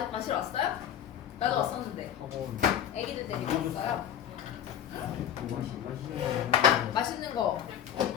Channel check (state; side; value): quieter; right; 9.9 dB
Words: 왔어요? 나도 왔었는데. 학원 애기들 데리고 왔어요. 마시는 맛있는 거.